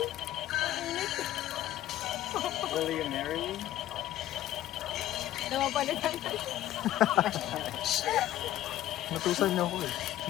Will you marry me? Namapalitan. Natusan niyo ako eh.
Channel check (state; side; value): quieter; right; 13.7 dB